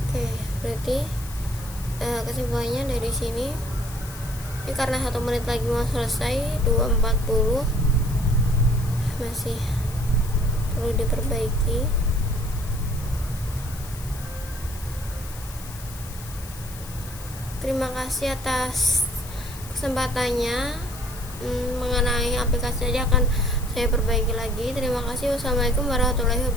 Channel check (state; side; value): noise; left; hiss, 16 dB below the sound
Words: Oke, berarti kesimpulannya dari sini ini karena 1 menit lagi mau selesai, 2.40 masih perlu diperbaiki. Terima kasih atas kesempatannya. Mengenai aplikasi aja akan saya perbaiki lagi. Terima kasih. Wassalamualaikum warahmatullahi